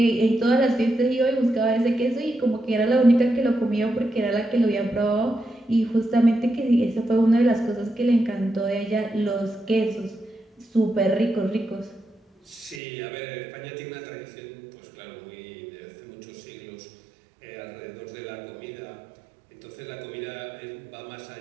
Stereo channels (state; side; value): drops out; left; at 12.8 s